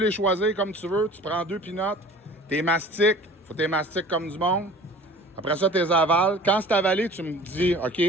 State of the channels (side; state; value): both; normal; correlation 0.45